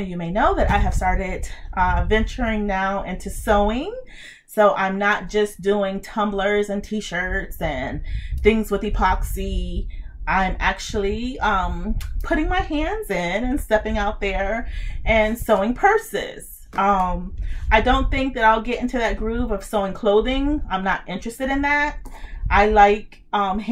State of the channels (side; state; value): both; identical; correlation 1.00